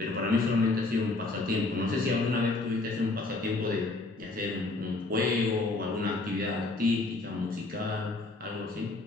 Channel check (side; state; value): right; quieter; 3.2 dB